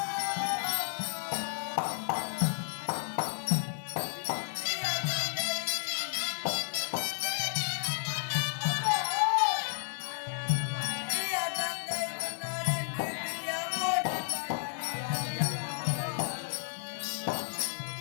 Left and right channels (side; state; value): right; silent; 56 dB below the other